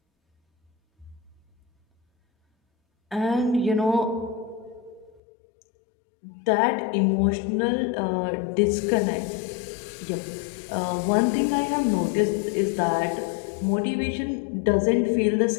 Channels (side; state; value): right; drops out; at 5.2 s